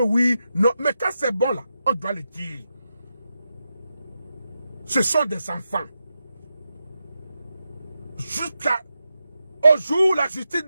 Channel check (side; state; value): both; inverted; correlation -0.88